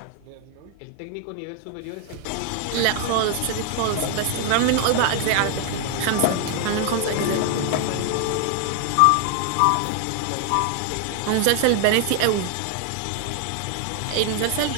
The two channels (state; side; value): different; both; correlation 0.00